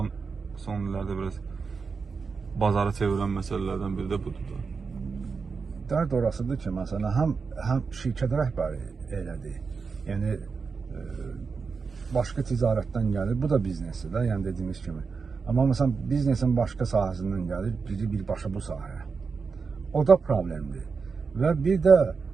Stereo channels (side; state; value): left; quieter; 5.1 dB